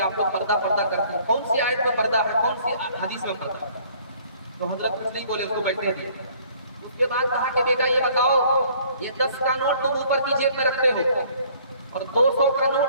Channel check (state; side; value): inverted; both; correlation -0.57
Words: آپ لوگ پردہ کرتے ہیں، کون سی آیت میں پردہ ہے، کون سی حدیث میں پردہ ہے؟ تو حضرت کچھ نہیں بولے، اس کو بیٹھنے دیے. اس کے بعد کہا کہ بیٹا یہ بتاؤ، یہ 10 کا نوٹ تم اوپر کی جیب میں رکھتے ہو اور 200 کا